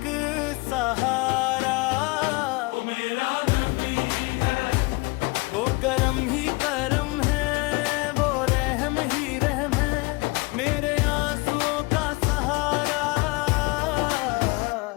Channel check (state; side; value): quieter; right; 24.6 dB